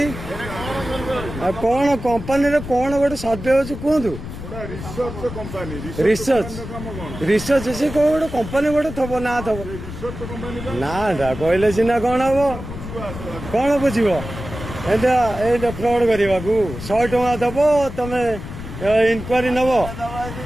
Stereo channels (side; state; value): left; noise; rumble, 10 dB below the sound